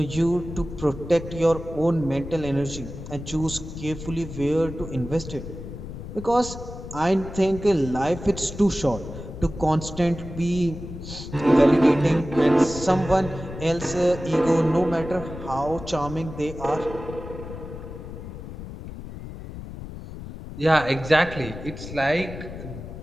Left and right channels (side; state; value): left; noise; rumble, 11 dB below the sound